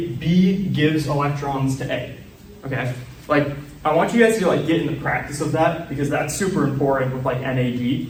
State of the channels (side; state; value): both; identical; correlation 1.00